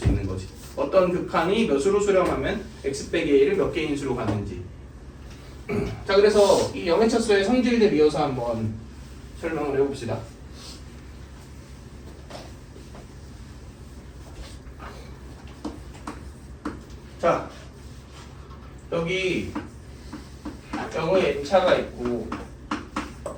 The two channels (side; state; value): both; identical; correlation 1.00